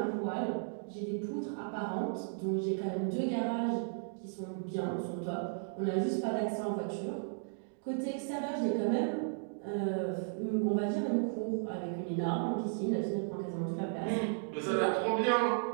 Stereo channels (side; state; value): left; silent; digital silence